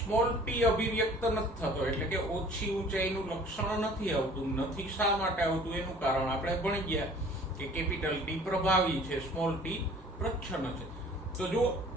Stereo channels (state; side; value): normal; both; correlation 0.50